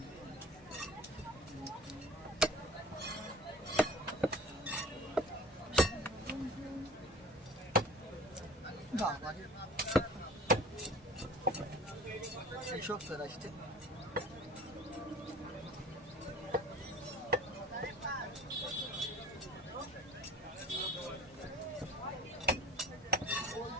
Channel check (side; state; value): both; normal; correlation 0.43